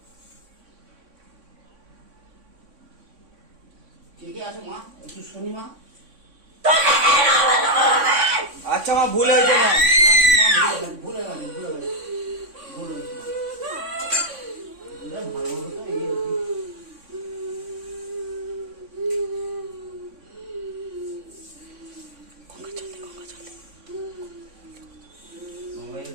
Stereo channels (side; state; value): left; late; 3.6 ms